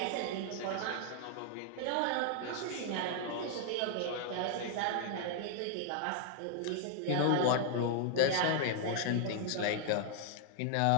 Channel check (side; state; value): both; different; correlation 0.00